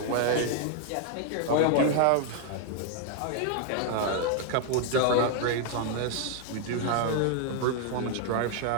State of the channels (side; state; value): both; different; correlation 0.00